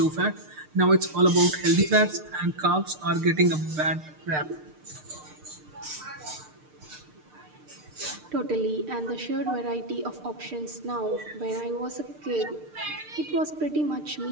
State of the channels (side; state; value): left; late; 6.6 ms